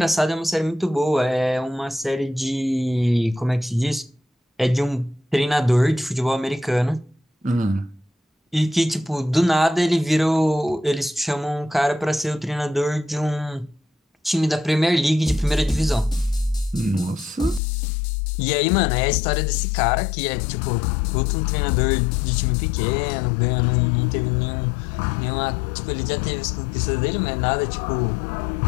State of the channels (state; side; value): drops out; right; at 17.6 s